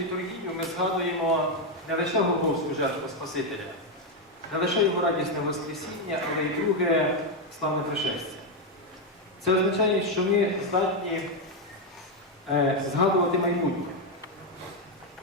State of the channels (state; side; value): normal; both; correlation 0.03